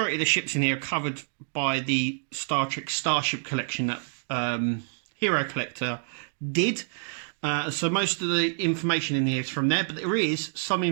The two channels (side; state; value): left; silent; digital silence